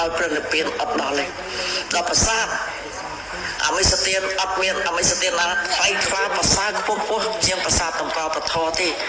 ព្រះនិព្វានអត់ដល់ទេដល់ប្រាសាទអមិសទានអត់មានអមិសទានណាថ្លៃថ្លាប្រសើរខ្ពស់ជាងប្រាសាទតម្កល់ពធទេ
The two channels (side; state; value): both; identical; correlation 1.00